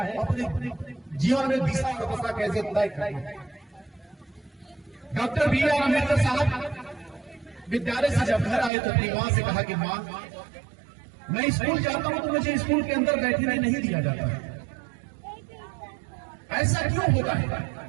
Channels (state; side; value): drops out; left; at 8.7 s